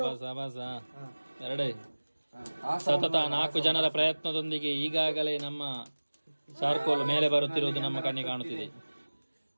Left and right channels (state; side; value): inverted; both; correlation -1.00